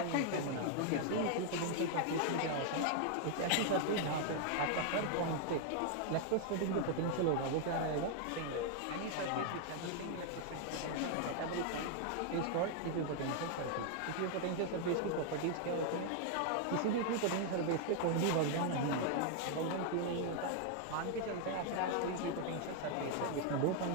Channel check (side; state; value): both; different; correlation 0.00